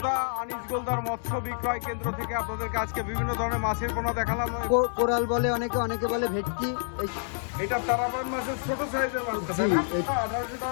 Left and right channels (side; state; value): right; silent; digital silence